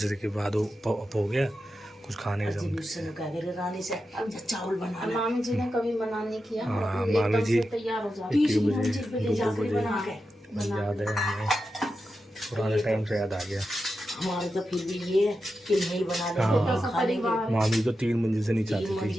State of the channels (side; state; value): both; normal; correlation 0.90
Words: के बाद वो अप हो गया, कुछ खाने का जम। रानी से अब चावल बना ला। मामी जी ने कभी मना नहीं किया। हाँ, एकदम मामी जी से तैयार हो जाती। 1 बजे 2 बजे याद है हमें। पुराने टाइम से याद आ गया। हमारे तो फिर भी ये है कि नहीं बना ले हाँ। तो खा लेंगे। मामी तो 3 मंजिल से नीचे 3 आती